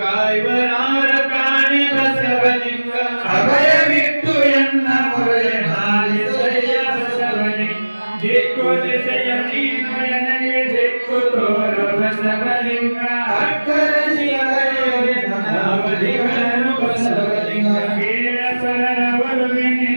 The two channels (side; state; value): both; inverted; correlation -1.00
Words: ಕಾಣಿ ಬಸವಲಿಂಗ. ಅಭಯವಿಟ್ಟು ಎನ್ನ ಮೊರೆಯ ಹಾಲಿಸಯ್ಯ ಬಸವಲಿಂಗ. ದಿಕ್ಕು ದಿಸೆಯ ನೀನು ನನಗೆ ದಿಕ್ಕು ತೋರು ಬಸವಲಿಂಗ. ಅಕ್ಕರ ಶಿವಲಿಂಗನು ಬಸವಲಿಂಗ. ಕೀಳ ಪರರ ಒಲುವೆ